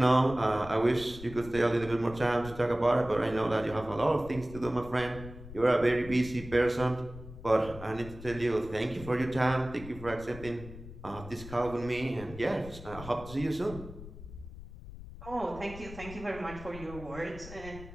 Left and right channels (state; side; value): noise; left; rumble, 14 dB below the sound